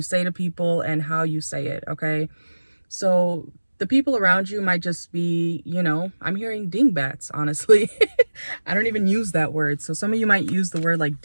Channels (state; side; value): inverted; both; correlation -1.00